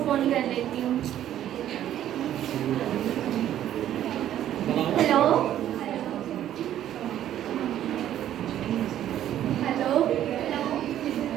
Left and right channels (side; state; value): left; quieter; 11.6 dB